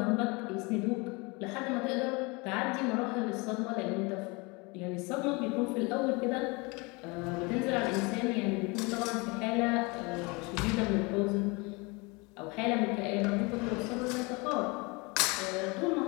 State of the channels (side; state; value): right; quieter; 27.5 dB